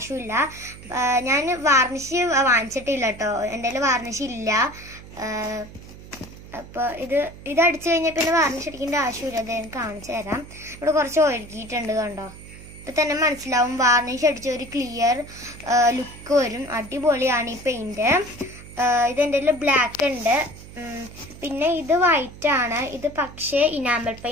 ഞാൻ വാർണിഷ് വാങ്ങിച്ചിട്ടില്ല കേട്ടോ, എൻ്റെ കയ്യിൽ വാർണിഷ് ഇല്ല. അപ്പൊ ഇത് അടിച്ചു കഴിഞ്ഞാൽ പിന്നെ വാർണിഷ് അടിക്കേണ്ട ആവശ്യമില്ല. അത് ഞാൻ കാണിച്ചു തരാം. ഇവിടെ കുറച്ച് ഒഴുകിയിട്ടുണ്ട് കണ്ടോ, ഇപ്പൊ തന്നെ മനസ്സിലാവും. വാർണിഷ് അടിച്ച ഒരു ക്ലിയർ ലുക്ക് വരും. അടിപൊളിയാണ് ഈ പെയിന്റ്. ഇത് എൻ്റെ കയ്യിൽ ബ്ലാക്ക് ഉണ്ട്. പിന്നെ ഇത് വൈറ്റ് ആണ്. ഇത് പക്ഷേ ഇനാമൽ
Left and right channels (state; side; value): noise; right; hum, 17 dB below the sound